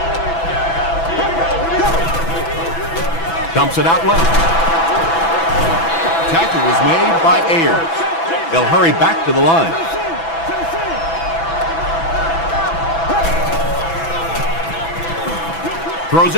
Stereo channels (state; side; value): late; right; 6.0 ms